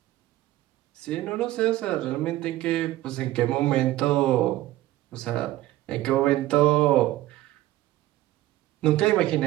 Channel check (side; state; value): left; quieter; 15.7 dB